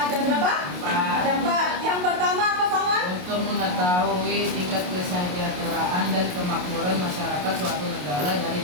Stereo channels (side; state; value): left; late; 28 ms